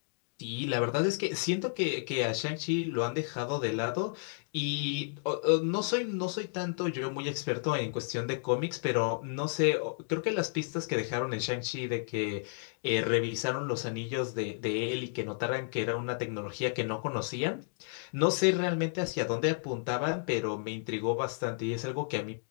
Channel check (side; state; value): right; silent; digital silence